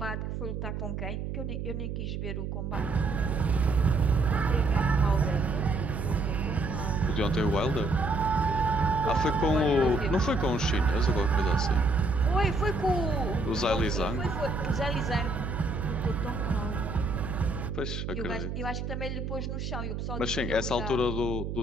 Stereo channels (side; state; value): right; noise; hum, 4 dB below the sound